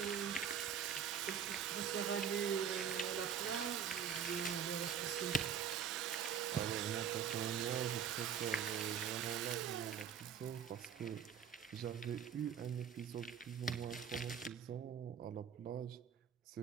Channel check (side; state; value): left; quieter; 8.0 dB